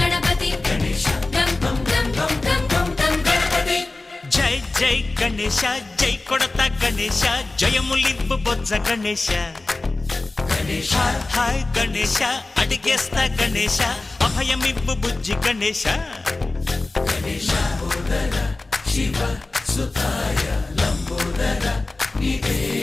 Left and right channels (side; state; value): right; quieter; 3.2 dB